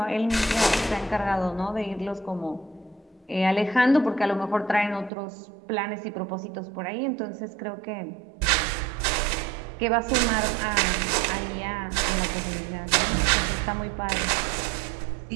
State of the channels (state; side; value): drops out; left; at 5.1 s